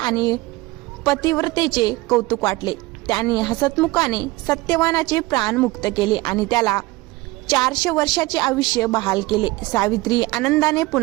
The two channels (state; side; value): quieter; left; 20.9 dB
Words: पतिव्रतेचे कौतुक वाटले. त्यांनी हसतमुखाने सत्यवानाचे प्राण मुक्त केले आणि त्याला 400 वर्षाचे आयुष्य बहाल केले. सावित्री आनंदाने